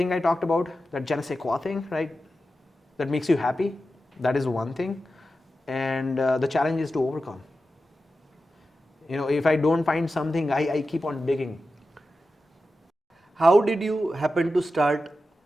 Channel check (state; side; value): normal; both; correlation 0.92